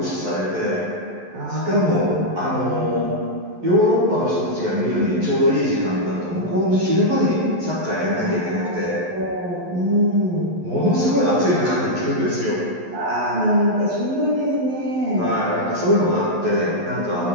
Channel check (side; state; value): left; late; 11 ms